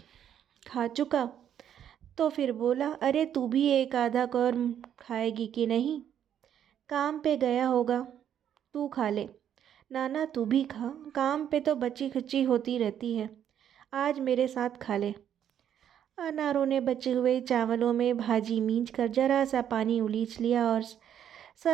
खा चुका तो फिर बोला, अरे तू भी एक आधा कौर खाएगी कि नहीं? काम पे गया होगा, तू खा ले। नाना तू भी खा, काम पे तो बची खुची होती रहती है, आज मेरे साथ खा ले। अनारों ने बचे हुए चावलों में भाजी मींच कर जरा सा पानी उलीच लिया और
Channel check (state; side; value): quieter; left; 9.7 dB